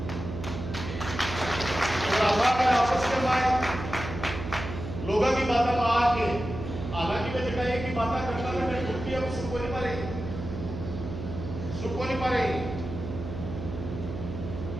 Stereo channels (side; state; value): right; noise; hum, 8 dB below the sound